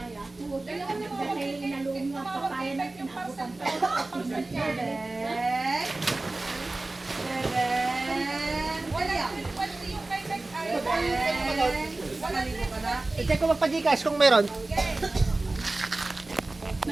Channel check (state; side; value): quieter; left; 3.0 dB